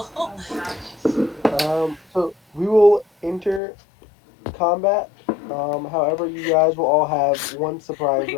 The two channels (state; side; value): drops out; right; at 3.6 s